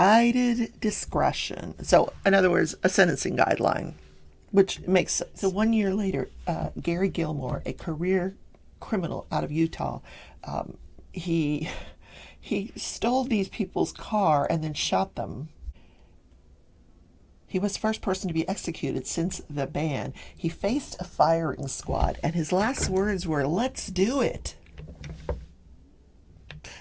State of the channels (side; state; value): both; identical; correlation 1.00